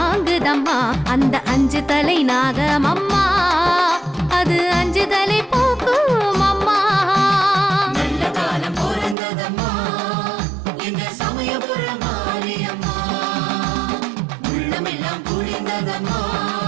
அந்த 5 தலை நாகமம்மா. அது 5 தலை போக்கும் அம்மா. நல்ல காலம் பிறந்ததம்மா எங்க சமயபுர மாரியம்மா. உள்ளமெல்லாம் குளிர்ந்ததம்மா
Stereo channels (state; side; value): drops out; left; at 9.2 s